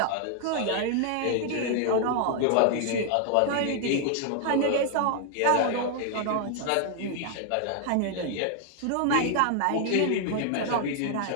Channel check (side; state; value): both; different; correlation 0.00